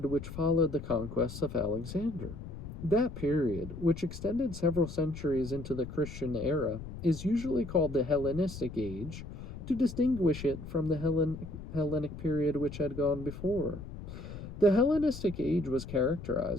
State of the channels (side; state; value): left; noise; rumble, 11 dB below the sound